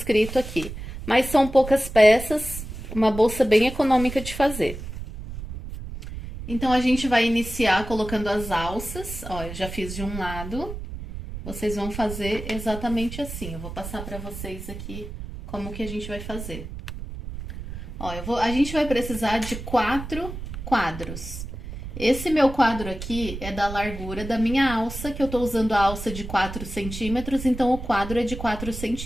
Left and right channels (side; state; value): right; noise; rumble, 9 dB below the sound